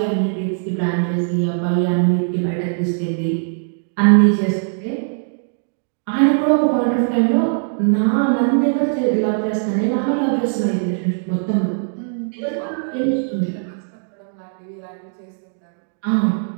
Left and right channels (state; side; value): silent; left; digital silence